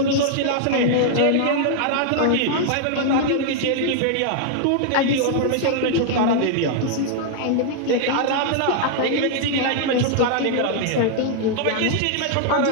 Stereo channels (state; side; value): different; both; correlation -0.01